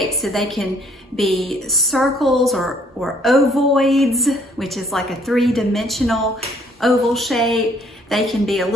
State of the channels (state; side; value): normal; both; correlation 0.63